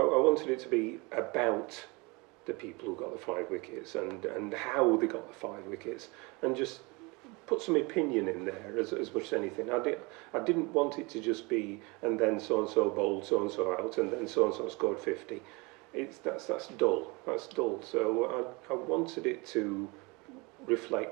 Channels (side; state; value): left; quieter; 26.9 dB